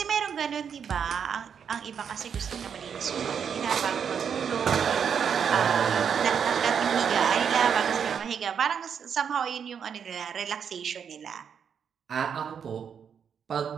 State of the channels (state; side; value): quieter; left; 7.4 dB